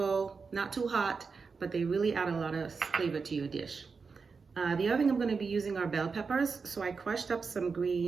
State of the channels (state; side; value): quieter; left; 5.0 dB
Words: not too hot, but they really add a lot of flavor to your dish. The other thing I'm going to be using are bell peppers. So I crushed up some